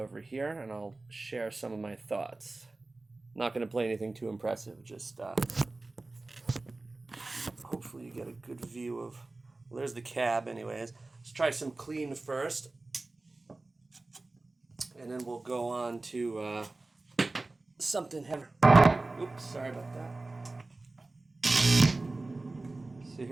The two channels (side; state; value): left; quieter; 3.2 dB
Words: here and I'll share some of my thoughts. Not going to play anything too impressive, just hopefully you get a good view of, well, there's the cab anyways. Let's try some clean first, and then we'll go on to something heavier. Oops, sorry about that. So